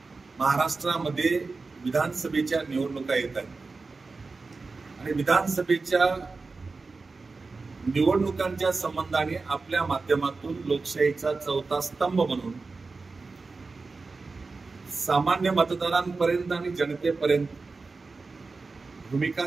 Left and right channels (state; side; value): quieter; left; 4.0 dB